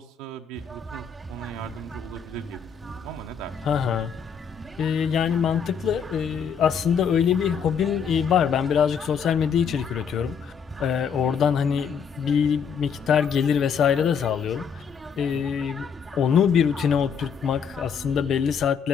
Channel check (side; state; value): right; quieter; 6.9 dB